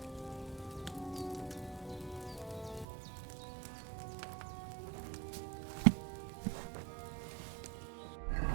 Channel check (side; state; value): left; drops out; at 2.9 s